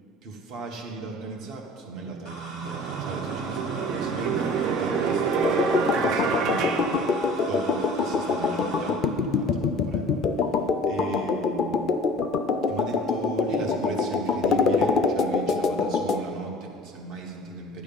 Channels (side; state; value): both; normal; correlation 0.46